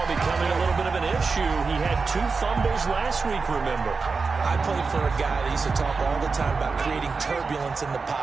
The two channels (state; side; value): quieter; left; 4.5 dB